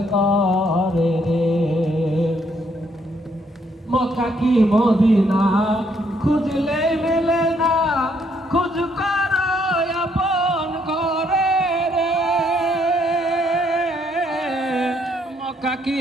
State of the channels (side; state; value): both; normal; correlation 0.71